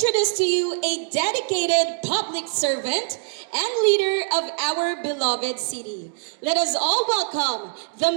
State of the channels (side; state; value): left; silent; digital silence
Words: to you a dedicated public servant and leader of our beloved city. Let us all welcome